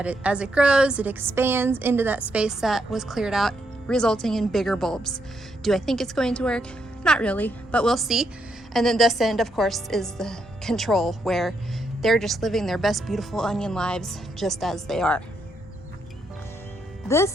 as it grows, it expands into that space that was cleared out, resulting in bigger bulbs. Do I think it's going to work? Not really, but we'll see. And then this end, of course, is the control, where they're just living their best beautiful onion lives just as they are.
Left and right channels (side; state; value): both; normal; correlation 0.78